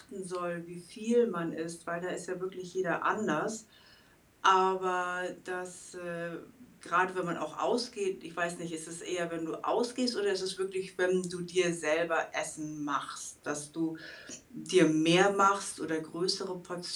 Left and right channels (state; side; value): identical; both; correlation 1.00